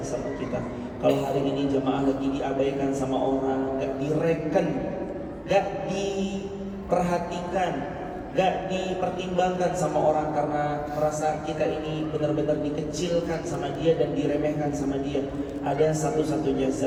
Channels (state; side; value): identical; both; correlation 1.00